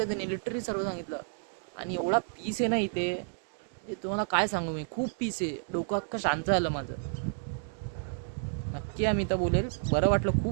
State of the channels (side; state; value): left; silent; digital silence